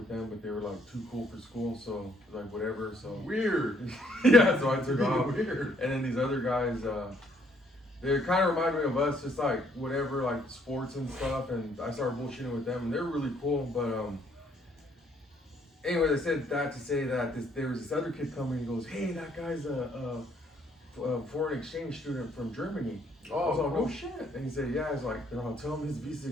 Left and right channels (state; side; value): normal; both; correlation 0.67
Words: them, but they were like too cool for school, so like whatever. So weird. Yeah, so I took off. Weird. And then these other guys, they kind of remind me of us, just like whatever, like sports and stuff. And I started bullshitting with them, and they're really cool. But Anyway, they said that to say that there was this other kid coming and goes, hey, that guy's a foreign exchange student from Germany. I was like, no shit. And he said, yeah. I was like, no, tell him his visa's